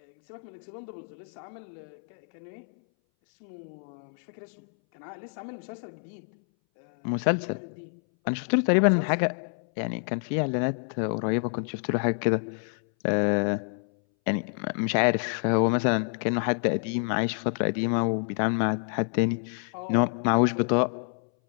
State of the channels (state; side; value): silent; right; 60 dB below the other